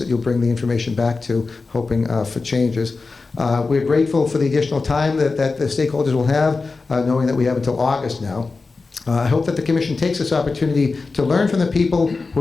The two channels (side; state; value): right; quieter; 4.0 dB